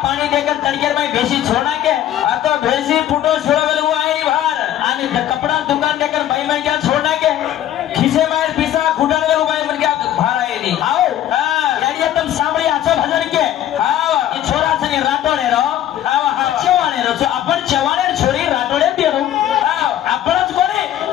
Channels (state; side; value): quieter; right; 11.9 dB